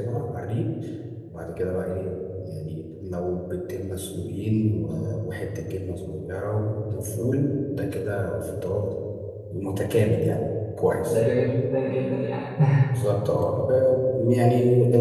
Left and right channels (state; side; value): identical; both; correlation 1.00